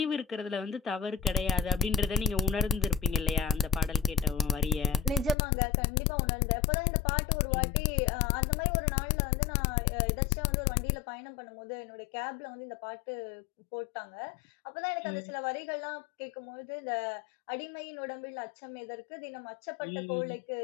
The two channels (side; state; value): right; drops out; at 5.4 s